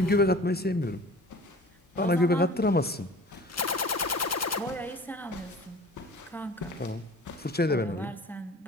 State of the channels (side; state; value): both; normal; correlation 0.44